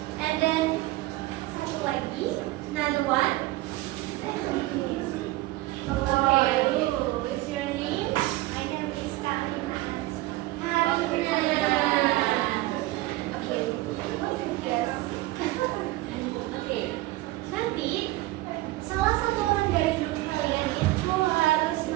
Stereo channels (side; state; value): left; quieter; 18.4 dB